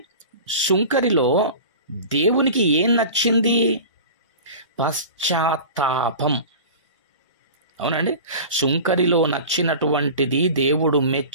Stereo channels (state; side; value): inverted; both; correlation -0.36